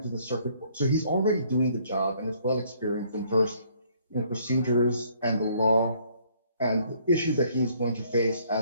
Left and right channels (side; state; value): both; inverted; correlation -0.63